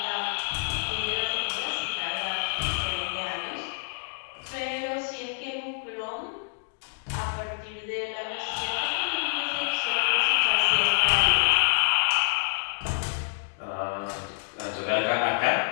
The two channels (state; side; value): silent; right; digital silence